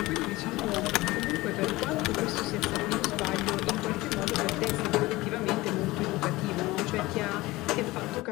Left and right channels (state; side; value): quieter; right; 19.8 dB